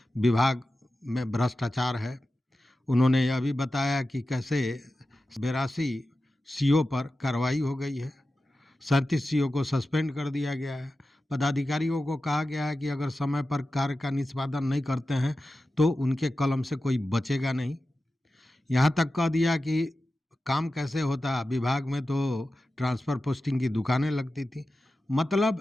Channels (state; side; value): normal; both; correlation 0.93